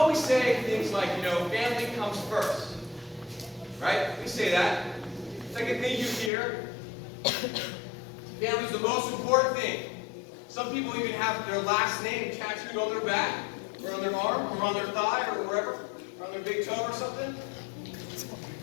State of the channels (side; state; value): right; drops out; at 6.3 s